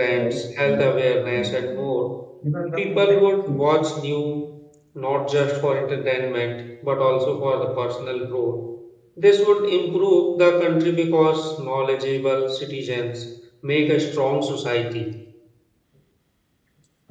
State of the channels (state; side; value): identical; both; correlation 1.00